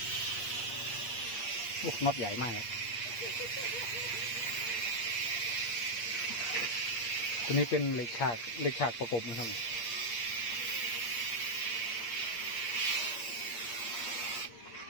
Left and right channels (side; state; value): right; late; 8.5 ms